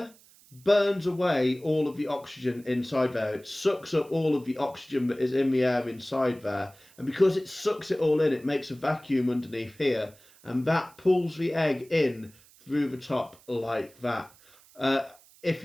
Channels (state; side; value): noise; right; hiss, 27 dB below the sound